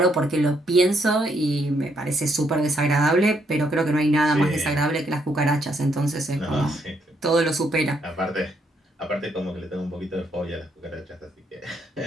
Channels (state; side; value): normal; both; correlation 0.74